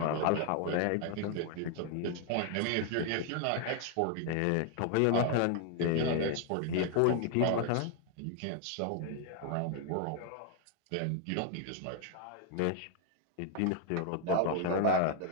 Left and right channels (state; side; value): different; both; correlation 0.00